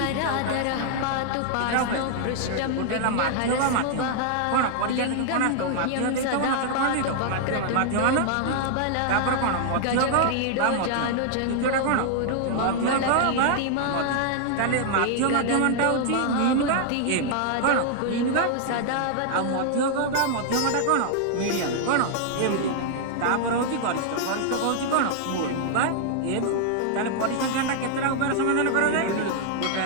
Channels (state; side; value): different; both; correlation -0.01